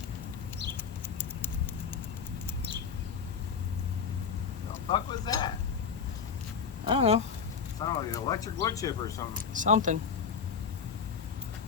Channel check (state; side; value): quieter; right; 6.3 dB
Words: The fuck was that? I don't know. Sounded like an electric wood chipper or something. Something.